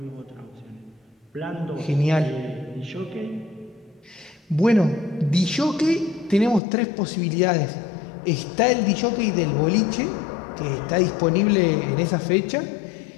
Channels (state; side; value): drops out; right; at 6.6 s